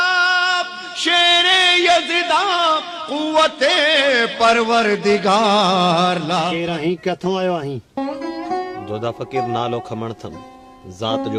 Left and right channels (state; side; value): identical; both; correlation 1.00